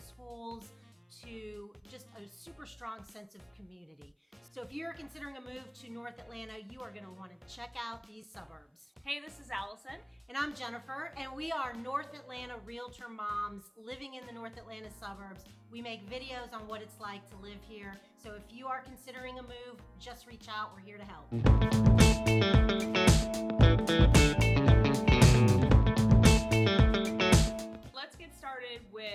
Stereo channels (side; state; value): both; identical; correlation 1.00